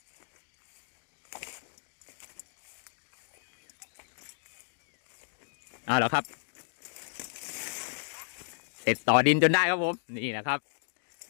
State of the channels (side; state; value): right; silent; digital silence